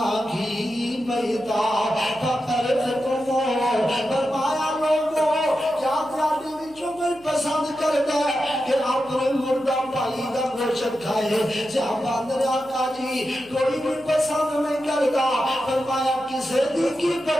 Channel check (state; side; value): noise; left; hum, 25 dB below the sound